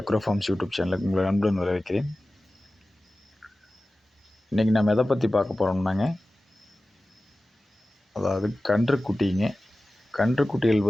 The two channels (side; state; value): both; normal; correlation 0.96